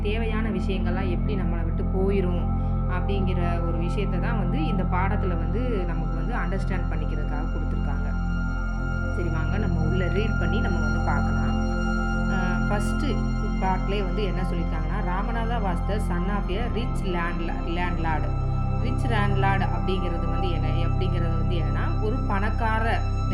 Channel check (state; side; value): identical; both; correlation 1.00